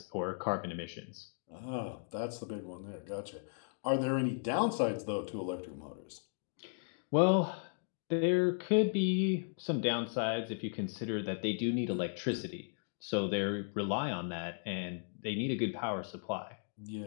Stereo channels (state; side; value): silent; right; digital silence